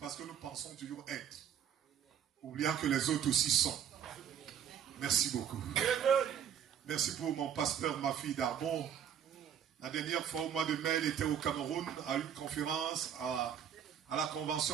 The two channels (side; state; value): left; quieter; 8.9 dB